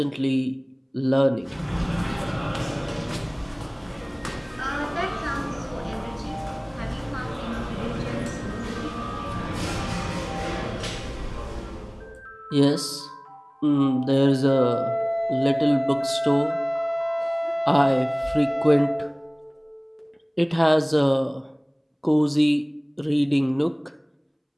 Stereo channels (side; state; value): both; identical; correlation 1.00